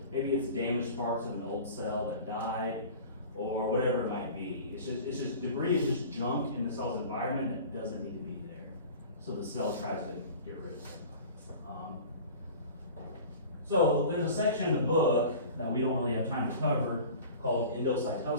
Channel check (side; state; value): both; inverted; correlation -0.40